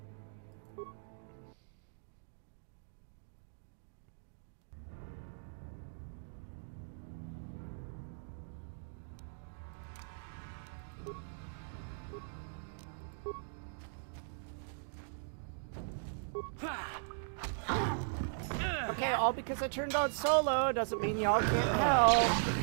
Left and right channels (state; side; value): silent; left; digital silence